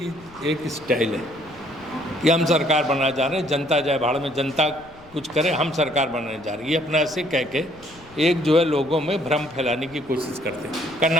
एक स्टाइल है कि हम सरकार बनाना चाह रहे हैं, जनता जाए भाड़ में, जनता कुछ करे, हम सरकार बनाने जा रहे हैं। ये अपना ऐसे कह के एक जो है लोगों में भ्रम फैलाने की कोशिश करते हैं।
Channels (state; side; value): noise; left; rumble, 24 dB below the sound